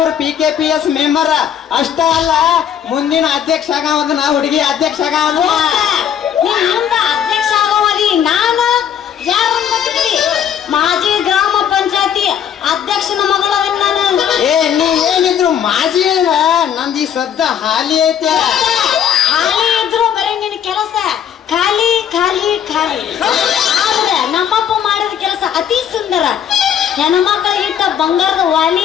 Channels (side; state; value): right; quieter; 8.9 dB